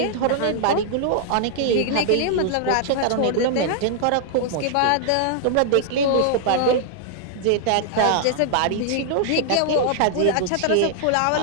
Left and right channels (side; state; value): both; different; correlation 0.00